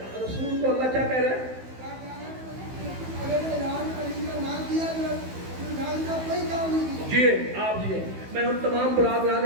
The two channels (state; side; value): late; left; 15 ms